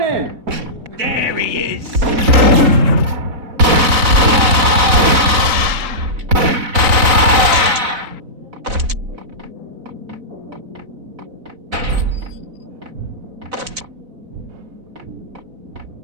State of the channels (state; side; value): late; left; 3.9 ms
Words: There he is!